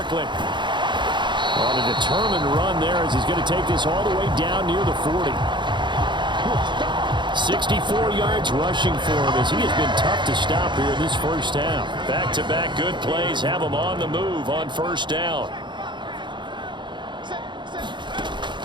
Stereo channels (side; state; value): left; late; 0.23 ms